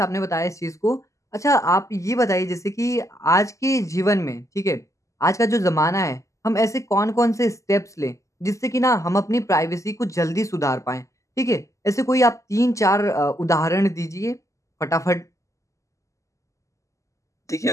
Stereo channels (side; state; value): right; late; 0.16 ms